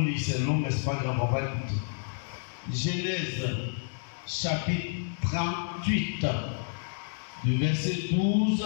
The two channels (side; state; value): right; silent; digital silence